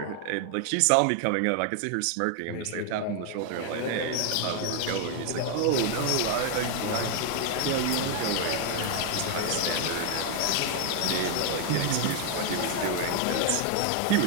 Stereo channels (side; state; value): both; different; correlation 0.00